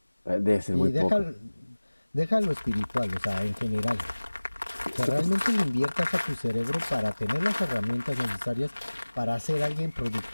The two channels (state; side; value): inverted; both; correlation -1.00